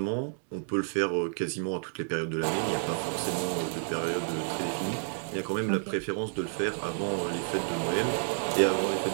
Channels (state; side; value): silent; left; digital silence